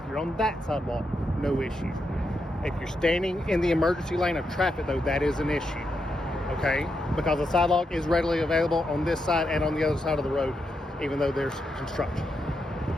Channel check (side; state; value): both; normal; correlation 0.84